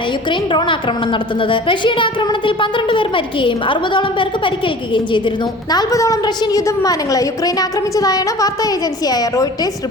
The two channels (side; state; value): both; normal; correlation 0.43